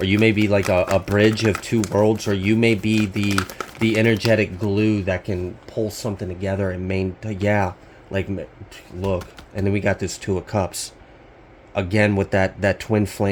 you may be like a bridge of two worlds, or you may be the energetic glue that can pull something together and yeah, like, look. And then we got this Two of Cups. Again, with that twin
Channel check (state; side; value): identical; both; correlation 1.00